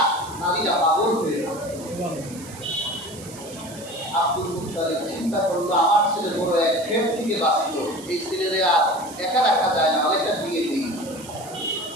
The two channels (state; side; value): noise; right; hiss, 16 dB below the sound